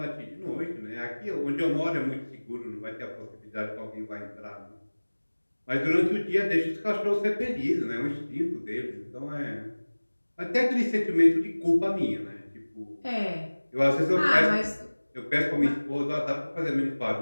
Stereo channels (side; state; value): both; inverted; correlation -1.00